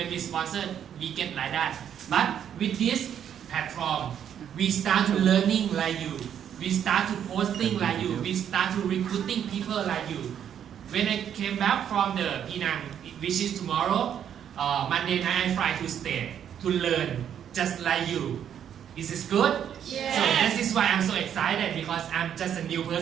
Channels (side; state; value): left; quieter; 9.2 dB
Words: we sponsor, we get like that. But with this platform, we start to learning like you. We start to posting like you. We start to recruiting people like you. When I came back from the Penang, which is tomorrow, Monday night I fly to stay to learn just like you. This is good? Yes. So this is why I'm so excited because I'm just a new